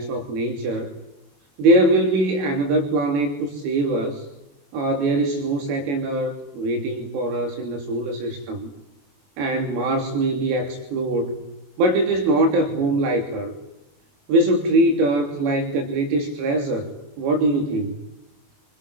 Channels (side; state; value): left; late; 21 ms